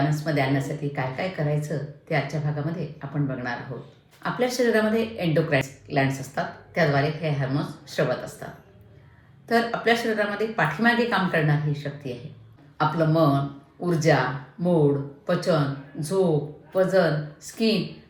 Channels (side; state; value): both; identical; correlation 1.00